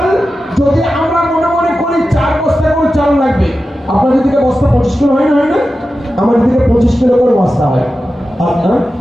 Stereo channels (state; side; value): normal; both; correlation 0.92